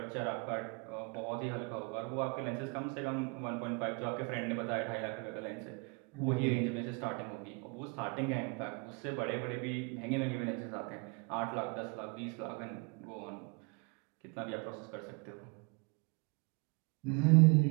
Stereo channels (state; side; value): quieter; left; 32.2 dB